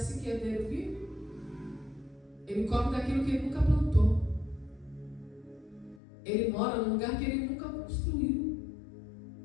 que herdeiro vive? Ele come daquilo que ele nunca plantou. Ele mora num lugar que ele nunca construiu.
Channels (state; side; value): drops out; right; at 6.0 s